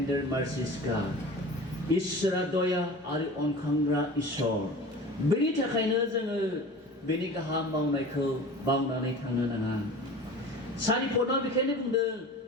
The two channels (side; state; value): both; normal; correlation 0.38